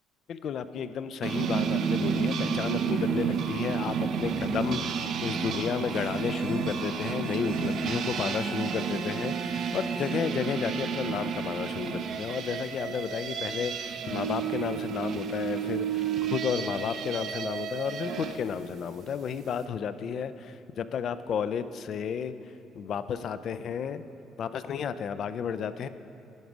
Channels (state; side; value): normal; both; correlation 0.59